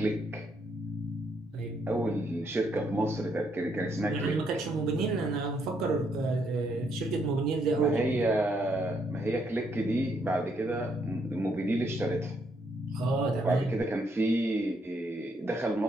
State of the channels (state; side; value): normal; both; correlation 0.74